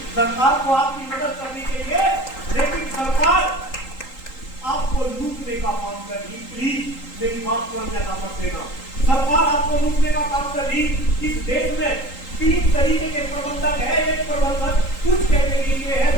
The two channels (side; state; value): right; late; 3.8 ms